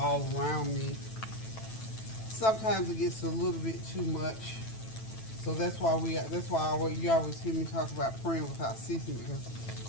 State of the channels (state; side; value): late; right; 9.1 ms